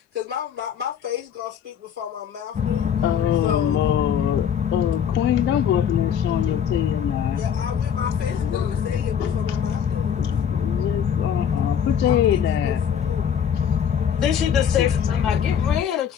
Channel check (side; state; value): right; quieter; 8.3 dB